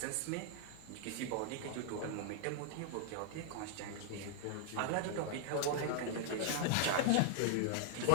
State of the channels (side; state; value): both; different; correlation 0.00